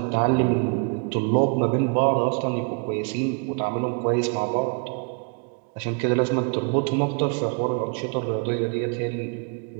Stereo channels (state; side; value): quieter; left; 36.7 dB